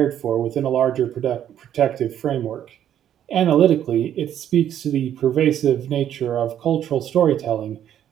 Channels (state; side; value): quieter; left; 10.4 dB